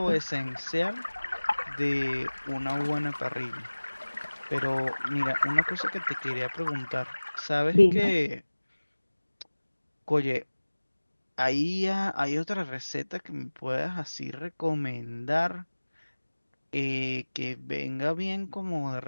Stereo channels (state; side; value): inverted; both; correlation -1.00